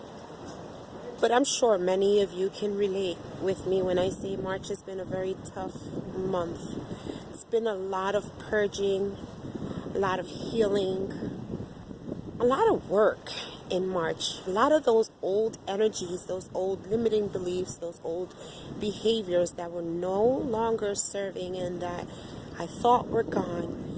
But I'm sure many of you can relate with me when I say March has been a very tough month. It's been a lot of purging, a lot of healing, a lot of work in March. A lot of those old energies, those old limiting beliefs, those old behaviors that were no longer serving and that I thought were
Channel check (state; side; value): identical; both; correlation 1.00